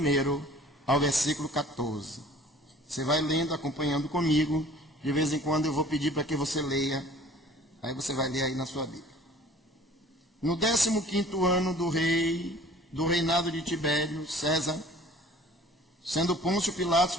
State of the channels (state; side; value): normal; both; correlation 0.49